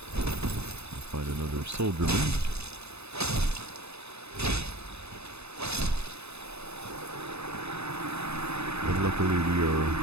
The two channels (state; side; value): late; left; 0.80 ms